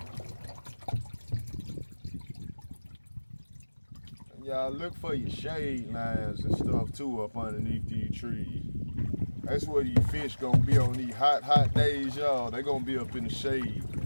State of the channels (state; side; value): inverted; both; correlation -1.00